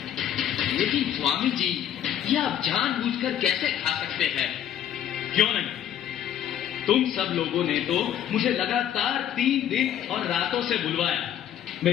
लेकिन स्वामी जी, ये आप जानबूझकर कैसे खा सकते हैं? क्यों नहीं? तुम सब लोगों ने तो मुझे लगातार 3 दिन और रातों से बुलवाया,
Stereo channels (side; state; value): right; quieter; 10.5 dB